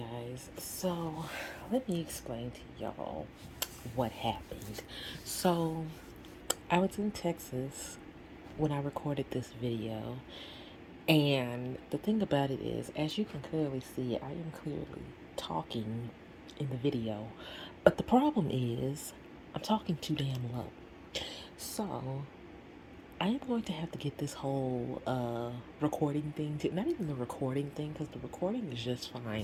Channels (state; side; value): identical; both; correlation 1.00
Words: so let me explain to y'all what happened. So, I was in Texas when I recorded this video, and the thing about it is, as you can clearly see, I am clearly talking in the video, but the problem is, I'm talking too damn low. So, I am going to have to get this whole recording thing to not even the recording thing because the recording is just fine